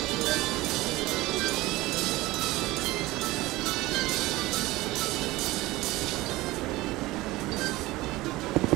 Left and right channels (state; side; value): quieter; left; 19.3 dB